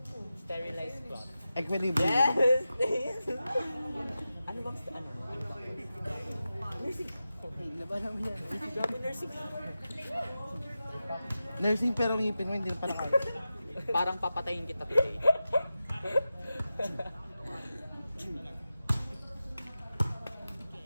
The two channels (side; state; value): both; inverted; correlation -0.93